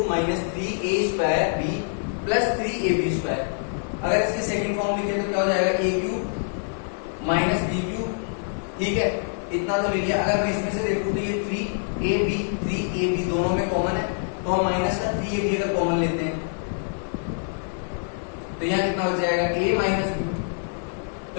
minus 3a square b plus 3ab square. अगर इसकी सेकंड फॉर्म लिखे तो क्या हो जाएगा, a cube minus b cube, ठीक है, इतना तो ले लिया। अगर मैं इसमें से देखूं तो ये 3ab दोनों में कॉमन है, तो हम माइनस का 3ab अगर कॉमन लेते हैं तो यहाँ कितना हो जाएगा, a माइनस बी।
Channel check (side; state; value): right; silent; digital silence